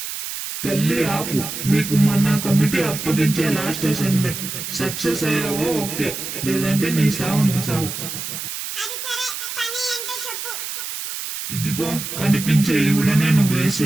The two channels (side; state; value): right; noise; hiss, 6 dB below the sound